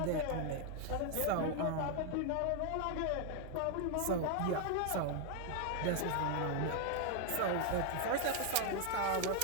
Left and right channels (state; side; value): different; both; correlation 0.00